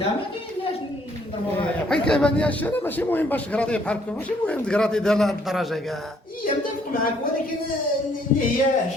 نضربوها. حيت كيبان لي الشارع ماشي مهم باش تقراطي بحال هكا، ماشي مهم تقراطي ديال هاد الدرجه كاع. هي متفق معاك، ولكن اللي هي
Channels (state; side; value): normal; both; correlation 0.65